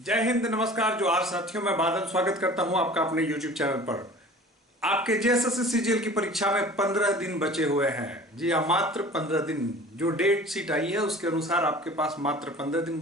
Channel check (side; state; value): both; normal; correlation 0.43